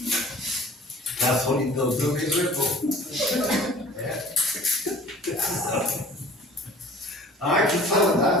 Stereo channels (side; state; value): both; normal; correlation 0.48